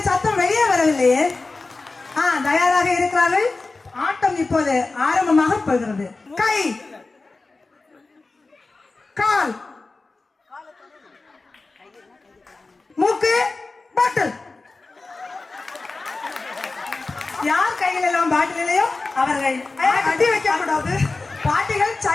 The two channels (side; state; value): right; quieter; 3.6 dB